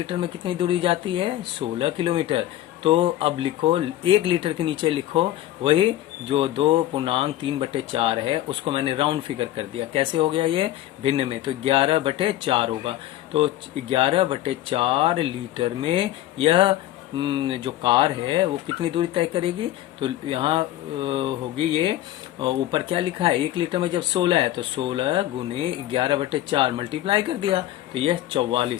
में कितनी दूरी जाती है, 16 किलोमीटर। तो अब लिखो, 1 लीटर के नीचे लिखो वही जो 2.3/4 है, उसको मैंने राउंड फिगर कर दिया। कैसे हो गया ये, भिन्न में, तो 11/4 होगा। तो 11/4 लीटर में यह जो कार है वो कितनी दूरी तय करेगी, तो यहाँ होगी ये, ऊपर क्या लिखा है, 1 लीटर में जब 16 है तो 16 × 11/4 मल्टीप्लाई कर दिया, तो यह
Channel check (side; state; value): right; quieter; 13.9 dB